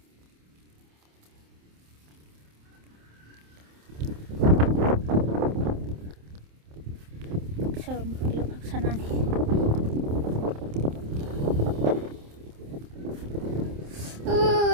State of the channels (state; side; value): late; left; 27 ms